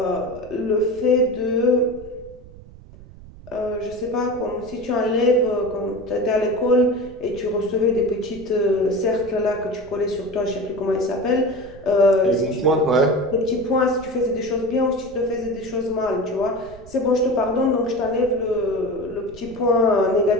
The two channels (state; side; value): noise; right; rumble, 19 dB below the sound